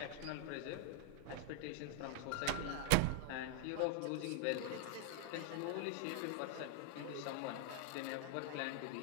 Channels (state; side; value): different; both; correlation 0.00